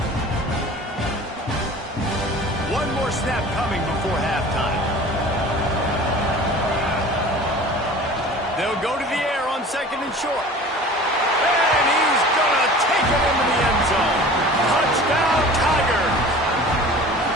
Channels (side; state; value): both; normal; correlation 0.42